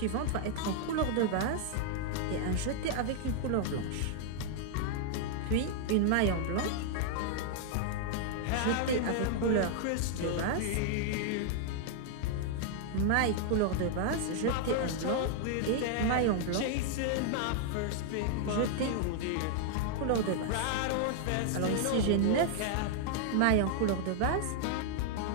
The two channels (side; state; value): both; different; correlation -0.01